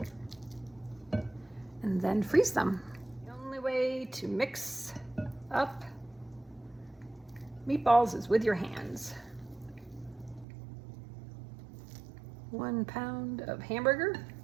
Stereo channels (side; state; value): left; drops out; at 10.5 s